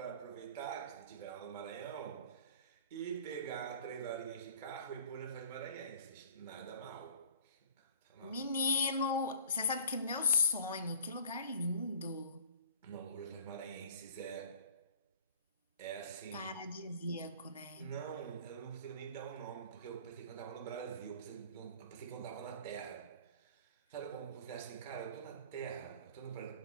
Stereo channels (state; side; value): inverted; both; correlation -0.48